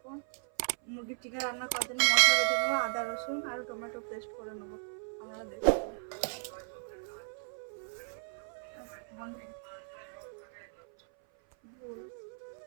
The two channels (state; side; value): silent; left; 54 dB below the other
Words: মুরগির চিকেন রান্না করার জন্য মশলা বেটে নেবো, আদা রসুন আর টমেটো পেস্ট করে নেবো। আপনারা দেখতে